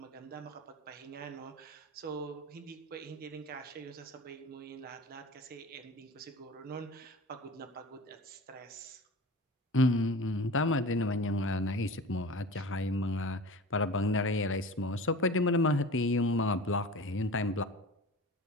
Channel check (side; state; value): both; normal; correlation 0.36